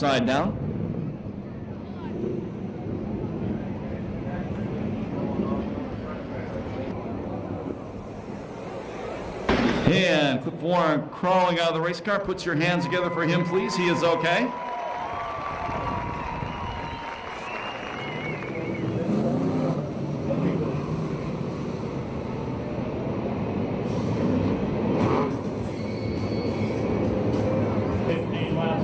down. And Cliff Warren crawling out of the race car. Puts your hands together for him, please. He is okay.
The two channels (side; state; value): both; identical; correlation 1.00